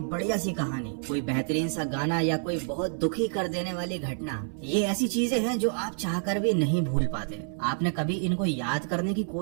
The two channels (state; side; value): silent; left; 59 dB below the other